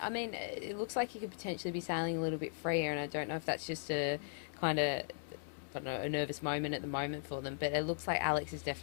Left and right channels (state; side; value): silent; right; digital silence